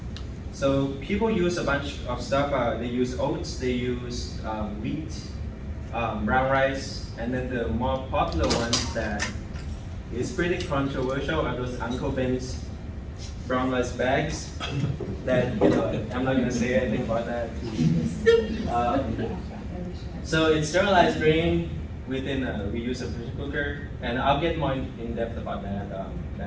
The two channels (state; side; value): identical; both; correlation 1.00